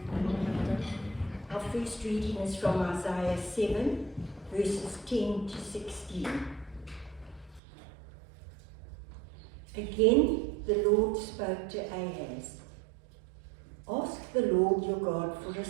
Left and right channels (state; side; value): drops out; left; at 7.6 s